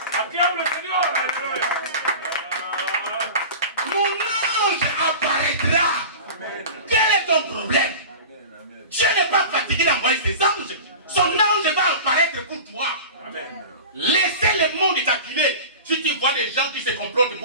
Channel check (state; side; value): inverted; both; correlation -0.34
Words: Acclame le Seigneur. Alléluia. Mon ange apparaîtra. Quel est ton problème? Dieu n'est pas fatigué d'envoyer ses anges. Son ange va apparaître pour toi. Amen. Laissez le monde t'acculer. Si tu vois des gens qui se complotent